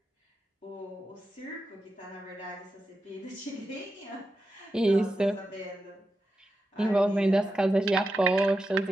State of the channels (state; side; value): normal; both; correlation 0.89